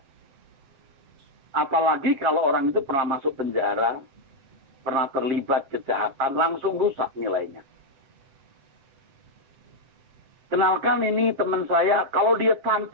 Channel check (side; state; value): left; late; 7.4 ms